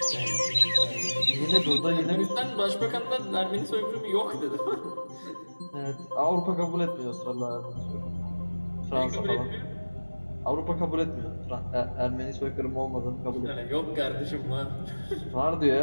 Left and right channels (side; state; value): both; inverted; correlation -1.00